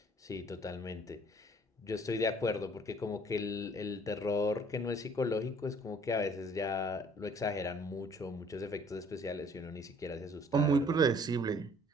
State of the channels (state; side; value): normal; both; correlation 0.57